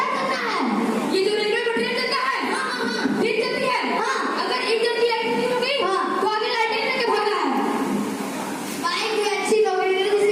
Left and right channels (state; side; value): identical; both; correlation 1.00